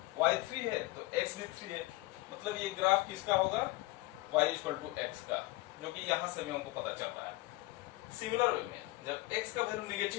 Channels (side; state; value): right; quieter; 20.5 dB